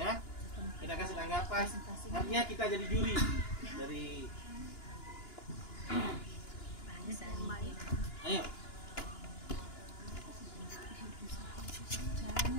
Kita kasih tanggapan. Artinya kita jadi juri dari. Ayo.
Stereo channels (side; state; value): right; late; 2.9 ms